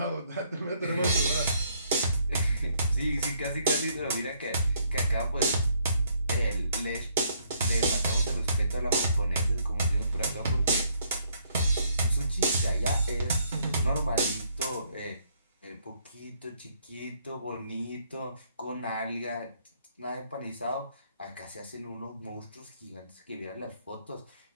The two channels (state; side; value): inverted; both; correlation -0.68